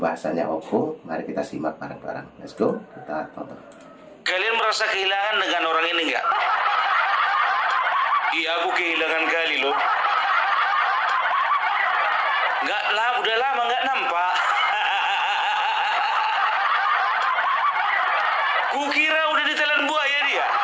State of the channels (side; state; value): both; identical; correlation 1.00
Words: Opung. Mari kita simak bareng-bareng. Let's go, kita tonton. Kalian merasa kehilangan dengan orang ini enggak? Iya, aku kehilangan kali loh. Enggak lah, udah lama nggak nampak. Kukira udah ditelan buaya dia.